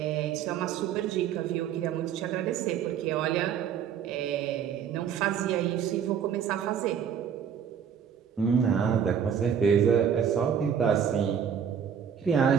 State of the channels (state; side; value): quieter; left; 8.0 dB